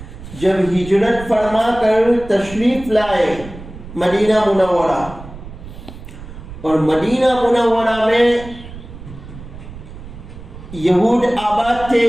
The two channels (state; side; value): noise; right; rumble, 14 dB below the sound